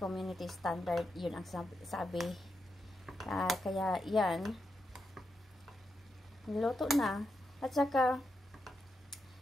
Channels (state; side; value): normal; both; correlation 0.85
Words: standard. Yun ang sabi. Kaya yan, niluto na. At saka